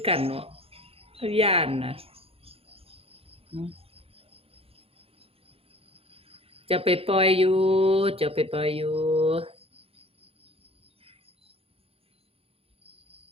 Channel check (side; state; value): left; late; 0.28 ms